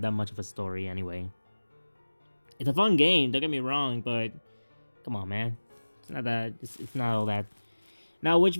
that much of a story anyway. It's a fun game, don't get me wrong, but come on, man, it's not that. It's not all that. Now, which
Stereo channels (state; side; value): inverted; both; correlation -1.00